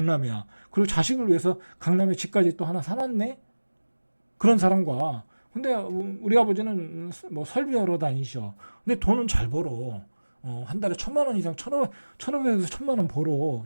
그리고 자식을 위해서 강남에 집까지 또 하나 사놨네. 그런 사람과 근데 우리 아버지는 설비하러 다니셔. 근데 돈은 잘 벌어. 한 달에 1,000만 원 이상, 1,500에서 1,000만 원 벌어.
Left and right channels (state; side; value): inverted; both; correlation -1.00